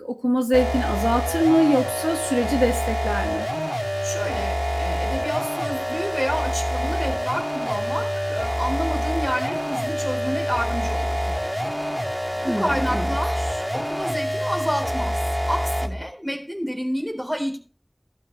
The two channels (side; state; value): both; identical; correlation 1.00